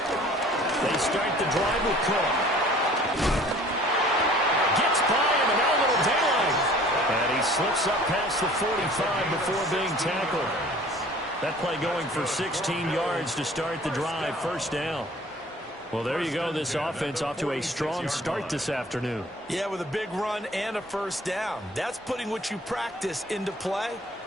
They start the drive with Cook. Gets by him, and now a little daylight. And he slips up past the 45 before being tackled. That play going for 16 yards to start the drive. 1st down. Well, there you go. This offense off to a strong start this afternoon. Yeah, with a big run and a 1st down. That's putting what you practice into play.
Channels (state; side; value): normal; both; correlation 0.50